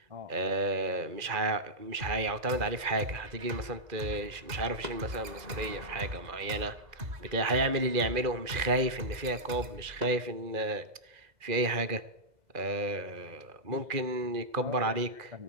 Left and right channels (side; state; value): left; late; 2.0 ms